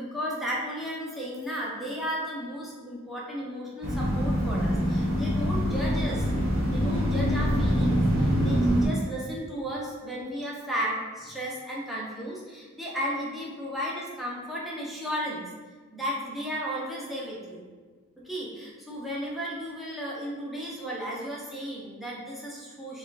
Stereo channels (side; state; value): both; normal; correlation 0.68